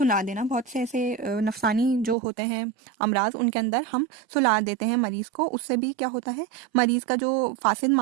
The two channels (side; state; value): left; drops out; at 2.1 s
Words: देना। बहुत से ऐसे नफसानी जो होते हैं अमराज, उनके अंदर हम सुला देते हैं मरीज़ को, उससे भी क्या होता है, मरीज़ का जो फासिद